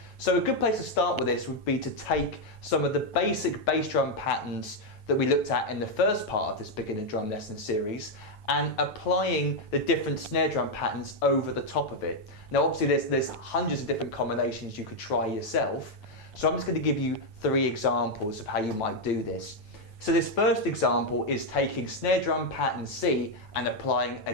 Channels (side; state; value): right; late; 9.2 ms